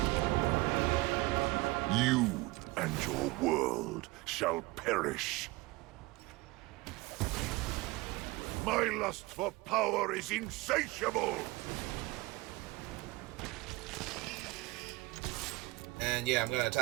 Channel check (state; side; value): quieter; left; 21.8 dB